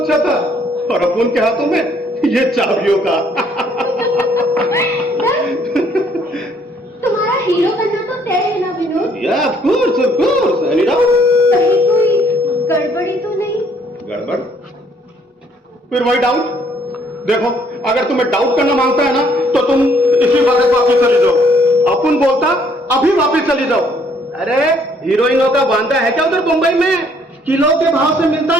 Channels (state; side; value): normal; both; correlation 0.65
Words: था और अपन के हाथों में ये चाबियों का। तुम्हारा हीरो बनना तो तय है ना विनोद? या ऑफ कोर्स एनी डाउट। कहीं कोई गड़बड़ी तो नहीं? गड़बड़? फिर वही डाउट। देखो अगर तुम्हें डाउट करना मांगता है ना तो तुम इसी वक्त वापस चली जाओ। अपन बोलता अभी वापस चली जाओ। अरे हीरोइनों का बांधा है क्या उधर मुंबई में? किलो के भाव से मिलता